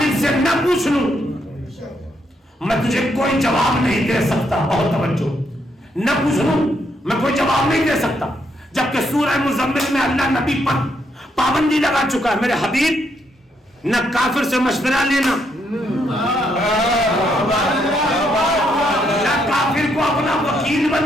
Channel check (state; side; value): normal; both; correlation 0.76